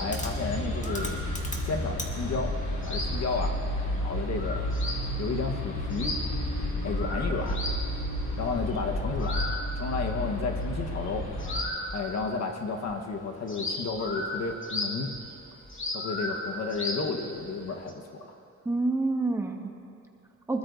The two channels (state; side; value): normal; both; correlation 0.36